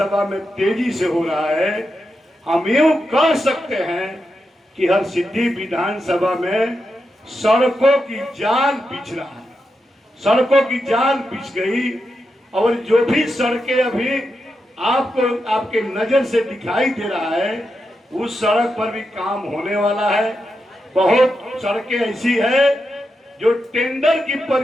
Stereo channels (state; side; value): normal; both; correlation 0.87